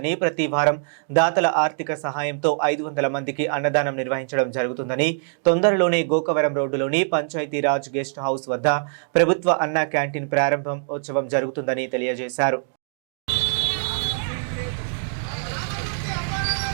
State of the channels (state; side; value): silent; left; digital silence